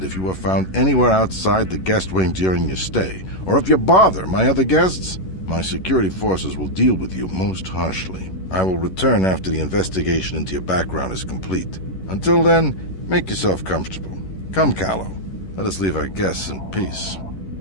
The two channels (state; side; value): late; right; 11 ms